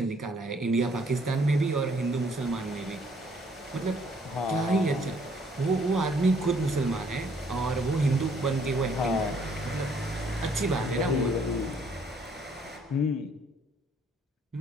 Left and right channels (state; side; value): normal; both; correlation 0.64